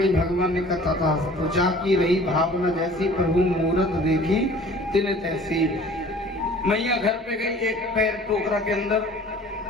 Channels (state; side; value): normal; both; correlation 0.49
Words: भगवान ने कहा था, तो जाकी रही भावना जैसी, प्रभु मूरत देखी तिन तैसी। मैया घर पे गई, एक पैर टोकरा के अंदर